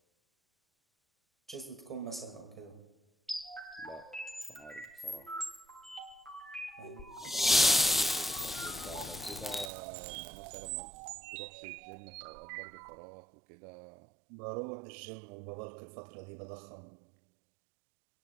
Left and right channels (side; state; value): left; drops out; at 9.7 s